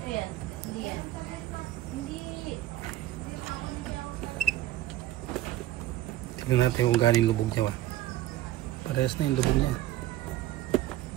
yan. Hindi yan. Hindi. Tignan natin kung galing lubog niya ba. Parehas na yung lubog niya.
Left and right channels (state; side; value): quieter; left; 14.4 dB